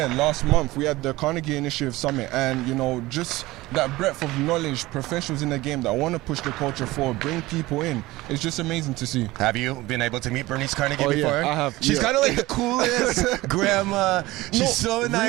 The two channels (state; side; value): quieter; left; 19.0 dB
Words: last month, we had the Carnegie Initiative Summit, and you know, just that breadth of knowledge, professionals in the game that want to push the culture forward, bring people in. It's just amazing to see. Have you been able to meet Bernice Carnegie before? Yeah, I have. She's kind of like the coolest grandma. She's so